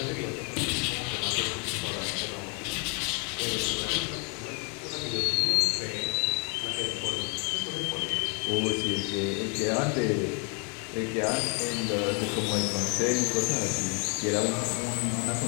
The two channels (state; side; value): quieter; right; 36.3 dB